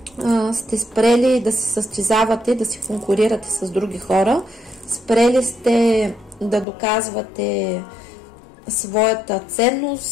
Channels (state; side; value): drops out; right; at 6.7 s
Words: сте спрели да се състезавате, да се конкурирате с други хора, спрели сте да доказвате своята ценност,